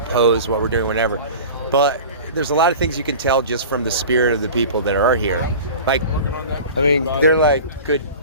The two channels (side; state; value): both; inverted; correlation -0.37